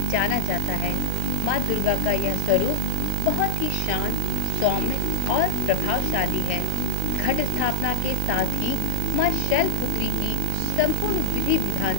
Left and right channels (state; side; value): different; both; correlation 0.00